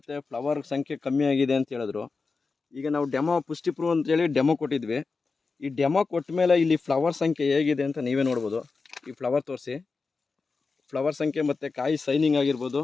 ಫ್ಲವರ್ ಸಂಖ್ಯೆ ಕಮ್ಮಿ ಆಗಿದೆ ಅಂತ ಹೇಳಿದ್ರು. ಈಗ ನಾವು ಡೆಮೋ ಪುಷ್ಟಿ ಪ್ರೂವ್ ಅಂತೇಳಿ ಡೆಮೋ ಕೊಟ್ಟಿದ್ವಿ. ಈ ಡೆಮೋ ಕೊಟ್ಟ ಮೇಲೆ ಇಲ್ಲಿ ಫ್ಲವರ್ ಸಂಖ್ಯೆ ಹೇಗಿದೆ ಅಂತ ನೀವೇ ನೋಡ್ಬೋದು. ಈ ಫ್ಲವರ್ ತೋರಿಸಿ, ಫ್ಲವರ್ ಸಂಖ್ಯೆ ಮತ್ತು ಕಾಯಿ ಸೈನಿಂಗ್ ಆಗಿರ್ಬೋದು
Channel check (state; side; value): quieter; right; 4.4 dB